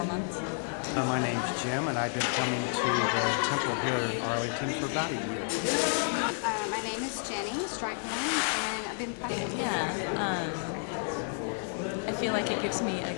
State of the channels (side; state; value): right; silent; 57 dB below the other